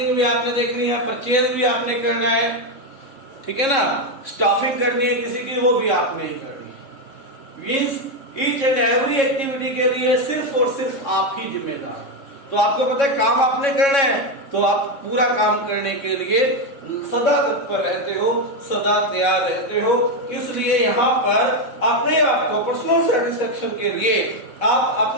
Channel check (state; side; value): late; right; 3.6 ms